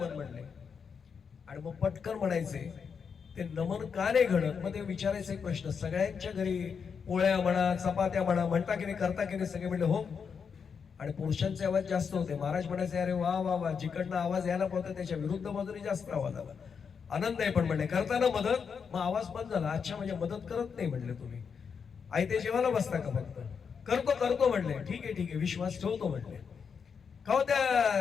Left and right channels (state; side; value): quieter; right; 6.3 dB